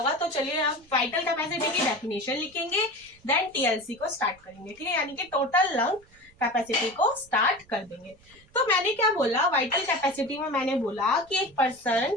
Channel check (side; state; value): right; noise; rumble, 28 dB below the sound